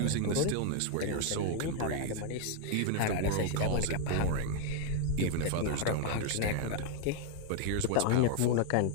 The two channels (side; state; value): both; different; correlation 0.00